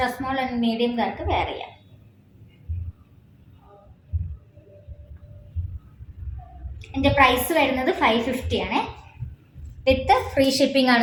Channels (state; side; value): identical; both; correlation 1.00